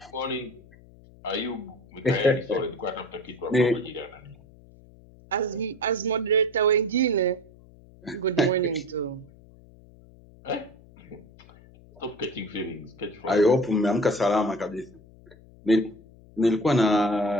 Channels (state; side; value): noise; left; hum, 24 dB below the sound